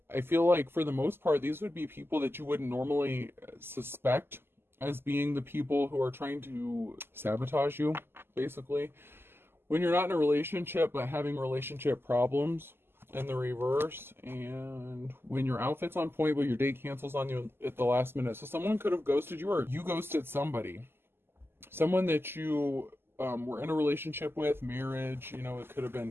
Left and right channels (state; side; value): late; left; 0.11 ms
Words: I feel like for the most part, these would be people that you wouldn't normally suspect as being the people who are trying to sabotage you, basically. When you're not in a relationship, but having relationship problems in the reverse, and when your outfit's on point, but your date cancels on you at the last minute. So someone could have ghosted you, or you ghosted somebody. Someone that you were in a relationship with, marriage, it could have been